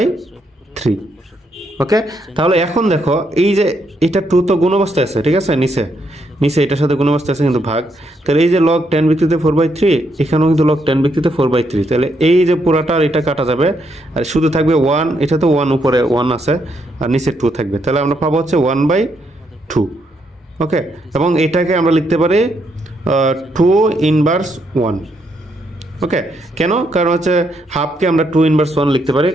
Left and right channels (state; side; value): normal; both; correlation 0.76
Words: 3। ওকে, তাহলে এখন দেখো এই যে এটা 2 তো গুণ অবস্থায় আছে, ঠিক আছে, নিচে এটার সাথে গুণ অবস্থায় আছে কিন্তু ভাগ, তাহলে এই যে লগ 10 ভিত্তিতে 4 বাই 3, এখানেও কিন্তু লগ 10 ভিত্তিতে 4 বাই 3, তাহলে এই যে পুরাটা এটা কাটা যাবে, আর শুধু থাকবে 1, এটা তো 1 উপরে 1 আছে, আর নিচে 2 থাকবে, তাহলে আমরা পাবো হচ্ছে 1 বাই 2। ওকে, এবং এটাকে আমরা লিখতে পারি 2 ইনভার্স 1। ওকে, কেন? কারণ হচ্ছে হাফকে আমরা 2 ইনভার্স 1 লিখতে পারি,